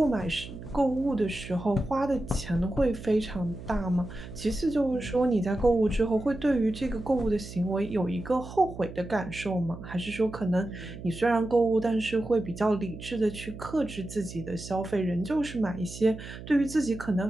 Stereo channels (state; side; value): noise; right; hum, 12 dB below the sound